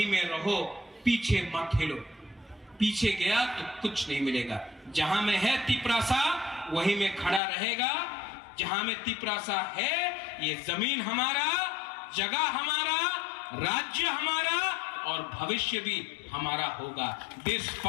में रहो, पीछे मत हिलो। पीछे गया तो कुछ नहीं मिलेगा। जहां में है तिपरासा वहीं में खड़ा रहेगा। जहां में तिपरासा है ये जमीन हमारा, जगह हमारा, राज्य हमारा और भविष्य भी हमारा होगा। This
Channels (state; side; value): drops out; right; at 7.4 s